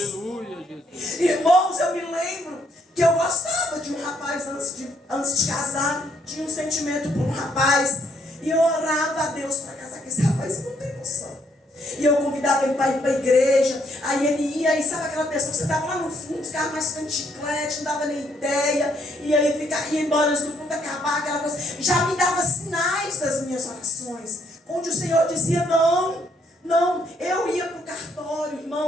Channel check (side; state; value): both; normal; correlation 0.71